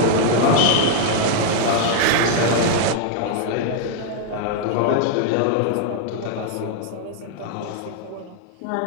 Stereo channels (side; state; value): both; different; correlation 0.00